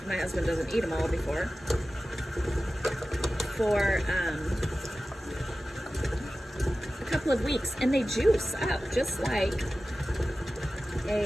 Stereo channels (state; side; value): normal; both; correlation 0.95